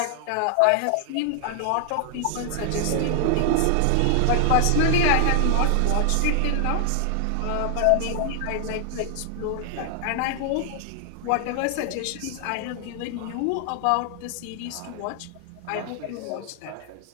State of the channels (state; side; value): different; both; correlation 0.00